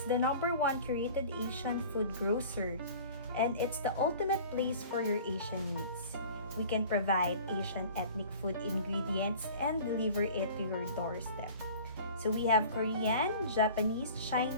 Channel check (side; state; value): both; inverted; correlation -0.44